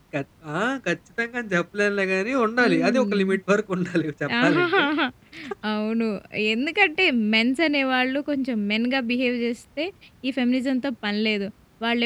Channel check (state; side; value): identical; both; correlation 1.00